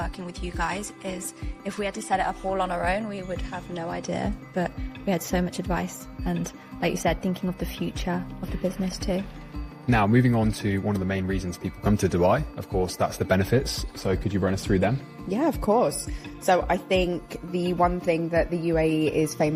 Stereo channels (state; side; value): identical; both; correlation 1.00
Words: with you guys, is if we had to set it up all on our own, we would have no idea. But we had so much advice and, like you said, thinking of the future of the business too. Now, moving on to one of the main reasons people come to Dubai, of course, that's the benefits. So could you run us through them? Yeah, of course. So I think the one thing that the UAE is